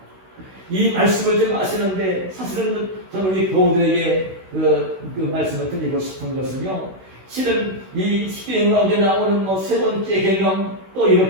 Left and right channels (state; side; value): late; left; 16 ms